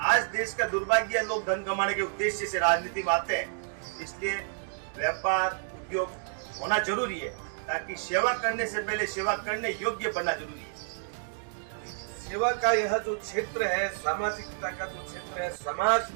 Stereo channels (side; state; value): left; silent; digital silence